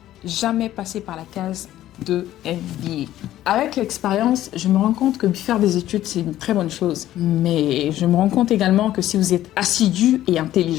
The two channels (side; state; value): right; quieter; 13.4 dB